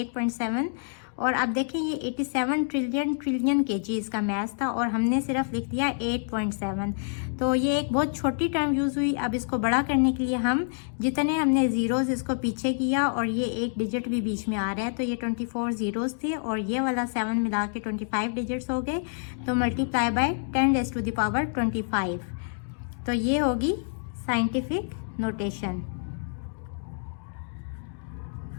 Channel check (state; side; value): silent; right; digital silence